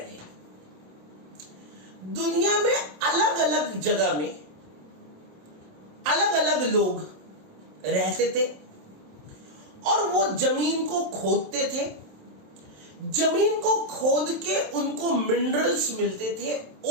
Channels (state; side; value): late; left; 27 ms